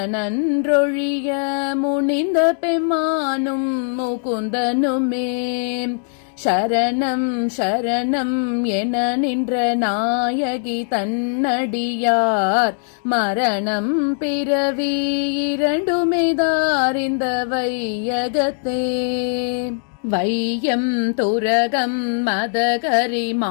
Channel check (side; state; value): right; silent; digital silence